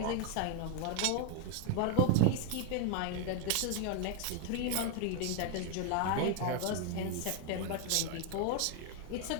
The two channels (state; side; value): different; both; correlation 0.00